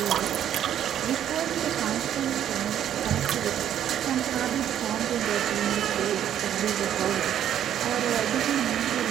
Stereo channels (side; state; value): left; quieter; 10.4 dB